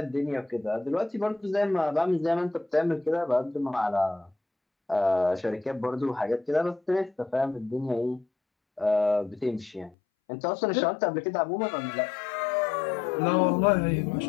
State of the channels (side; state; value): right; drops out; at 10.0 s